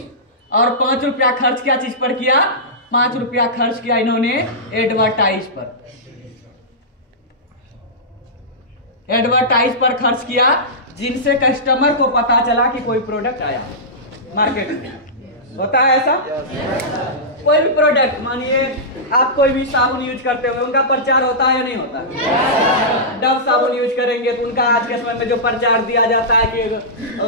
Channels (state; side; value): normal; both; correlation -0.15